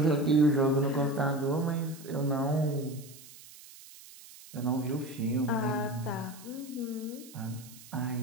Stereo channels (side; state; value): right; noise; hiss, 19 dB below the sound